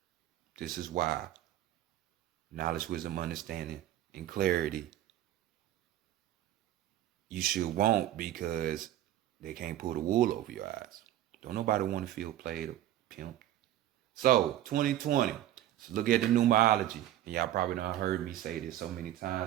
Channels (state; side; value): quieter; left; 13.0 dB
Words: This is why knowledge, wisdom, understanding, and clarity you should want, because they can't pull the wool over your eyes. Don't nobody want to feel played or pimped. So 2020. So look at the numerology. And y'all probably done heard me say this so many